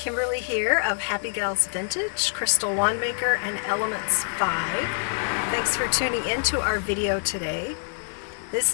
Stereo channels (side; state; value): right; silent; digital silence